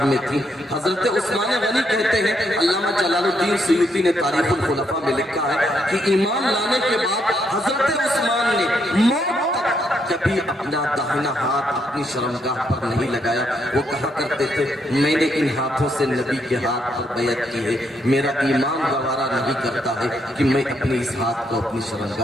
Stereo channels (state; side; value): normal; both; correlation 0.76